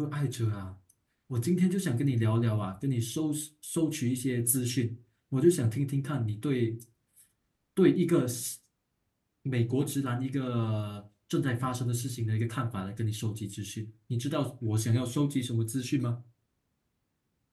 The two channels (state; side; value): identical; both; correlation 1.00